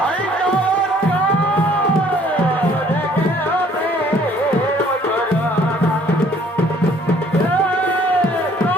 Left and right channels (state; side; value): normal; both; correlation 0.59